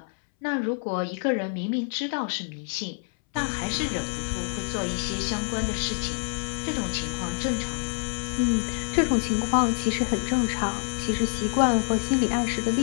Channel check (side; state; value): right; silent; 60 dB below the other